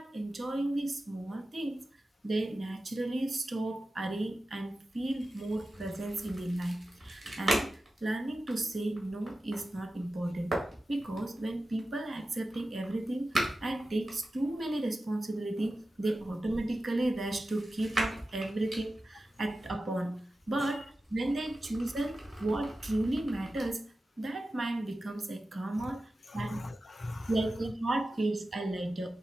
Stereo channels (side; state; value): both; normal; correlation 0.93